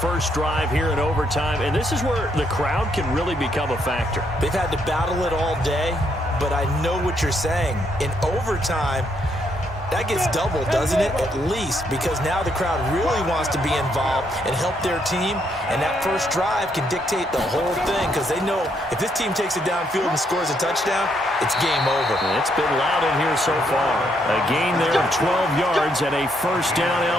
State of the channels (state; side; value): normal; both; correlation 0.74